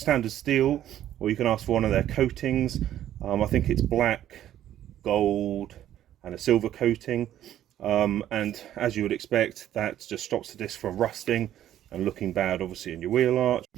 steel, or you can ask for one of their coatings. I think it's black, gold and a silver coating, and as you would expect, that just stops the disc from rusting and looking bad obviously in your wheel arch.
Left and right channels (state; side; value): quieter; left; 11.8 dB